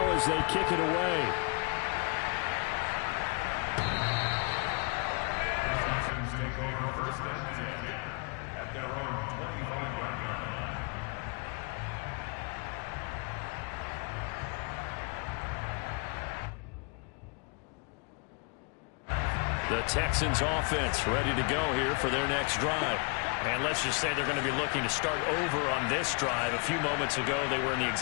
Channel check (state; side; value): quieter; right; 35.0 dB